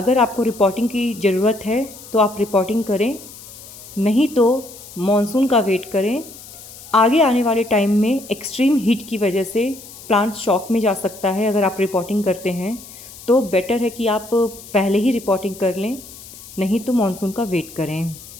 आपको रिपोर्टिंग की ज़रूरत है तो आप रिपोर्टिंग करें, नहीं तो मॉनसून का वेट करें। आगे आने वाले टाइम में एक्सट्रीम हीट की वजह से प्लांट शॉक में जा सकता है। अगर आप रिपोर्टिंग करते हैं तो बेटर है कि आप पहले ही रिपोर्टिंग कर लें, नहीं तो मॉनसून का वेट करें।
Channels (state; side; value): noise; left; hiss, 17 dB below the sound